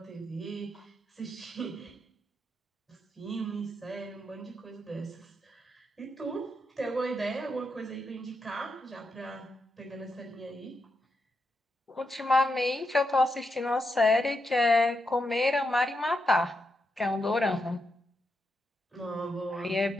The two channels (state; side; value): normal; both; correlation 0.84